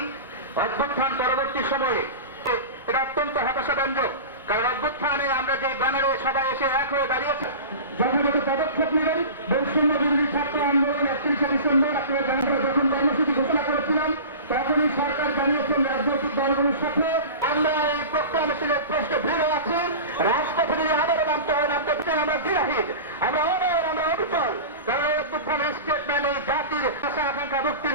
অভ্যুত্থান পরবর্তী সময়ে এটা অত্যন্ত হতাশাব্যঞ্জক, কারণ অভ্যুত্থানে আমরা যে ব্যানারে সবাই এসে এক হয়ে দাঁড়িয়েছি। জনগত পদক্ষেপ নেবেন। বৈষম্য বিরোধী ছাত্র আন্দোলন 31শে ডিসেম্বর আপনারা যখন কর্মসূচি ঘোষণা করেছিলাম তখনই সরকার জানিয়েছেন রাজনৈতিক দলগুলোর সাথে আমরা এই প্রোক্লেমেশনের প্রশ্নে ভিড় আছি। রাজপথে যদি আবারও নামতে হয় নামতে আমরা বিরাহীন, আমরা অনর, আমরা অবিচল। কারণ অভ্যুত্থানের স্টেটমেন্ট এই জাতির আশা আকাঙ্ক্ষা মুক্তির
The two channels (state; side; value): inverted; both; correlation -0.33